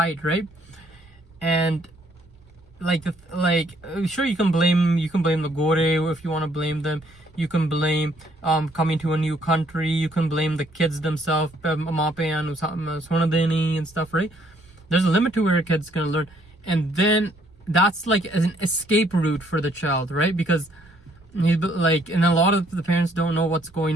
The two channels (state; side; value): normal; both; correlation 0.66